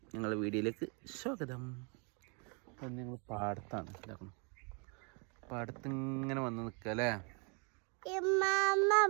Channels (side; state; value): left; quieter; 35.1 dB